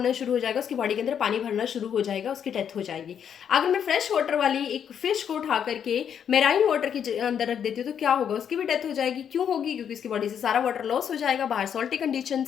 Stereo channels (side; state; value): right; quieter; 8.3 dB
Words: शुरू हो जाएगा, उसकी बॉडी के अंदर पानी भरना शुरू हो जाएगा, उसकी डेथ हो जाएगी। अगर मैं फ्रेश वाटर वाली एक फिश को उठा करके मेराइन वाटर के अंदर रख देती हूँ तो क्या होगा? उसकी भी डेथ हो जाएगी। क्यों होगी? क्योंकि उसकी बॉडी से सारा वाटर लॉस हो जाएगा, बाहर सॉल्टी कंडीशन